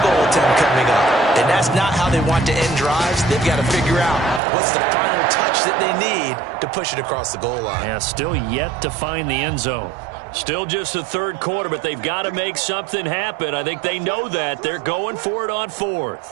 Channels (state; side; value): drops out; left; at 4.4 s